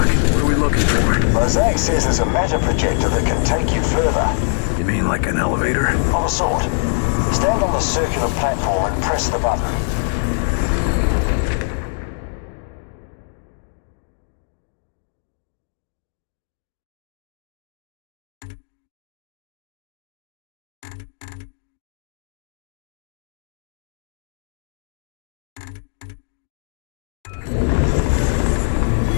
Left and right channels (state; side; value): silent; right; digital silence